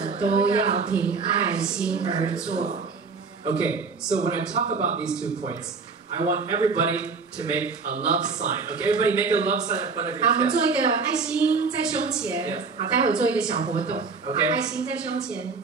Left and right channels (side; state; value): left; quieter; 4.8 dB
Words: 都要凭爱心而做。Okay, so when I talk about these 2 points, I want everybody to make a love sign. Okay, everybody make a love sign in front of your 好，我们 chest. 做一个爱心在胸前。好，待会做一个小活动。Okay. 爱心在胸前。